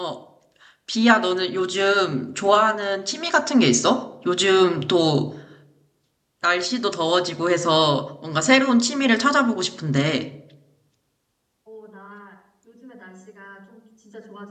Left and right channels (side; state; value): both; identical; correlation 1.00